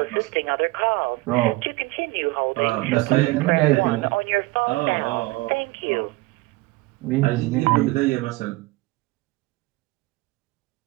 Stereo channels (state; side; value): quieter; left; 21.3 dB